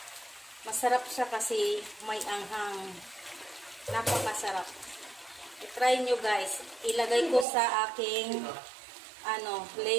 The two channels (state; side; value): drops out; left; at 7.5 s